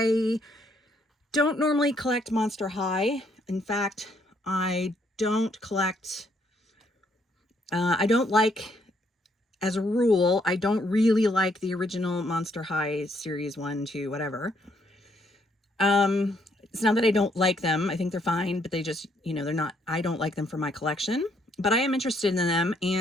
don't normally collect Monster High. In fact, I don't collect, I don't like, as a rule, I don't really like the original Monster High series 1, 2, whatever. It's not that I don't like them. I think they're fine, but they just, they're not, I don't like them for my collection, but I am interested in them.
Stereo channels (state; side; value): normal; both; correlation 0.70